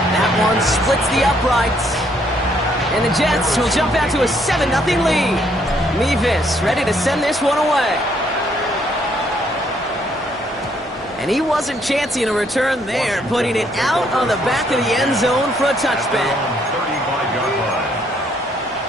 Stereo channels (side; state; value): both; normal; correlation 0.69